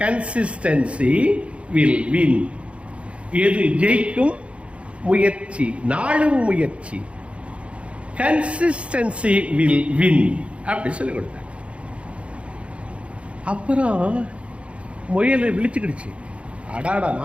கன்சிஸ்டன்சி வில் வின். எது ஜெயிக்கும்? முயற்சி, நாளும் முயற்சி. கன்சிஸ்டன்சி வில் வின் அப்படி சொல்லி கொடுத்தாங்க. அப்புறம் முயல் விழிச்சுக்கிடுச்சு. அடாடா,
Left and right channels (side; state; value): left; late; 0.061 ms